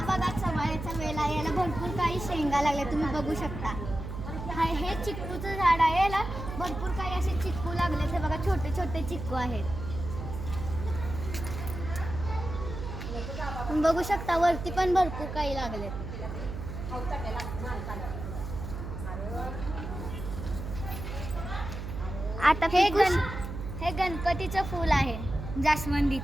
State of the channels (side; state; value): right; noise; hum, 7 dB below the sound